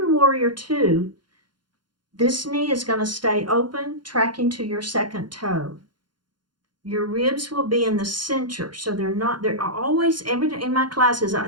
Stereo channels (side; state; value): left; late; 0.71 ms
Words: warrior two, this knee is going to stay open, tracking to your second toe. Your ribs will be in the center, so they're always, in my classes,